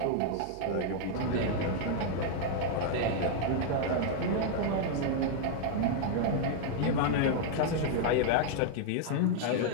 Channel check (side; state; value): both; different; correlation -0.01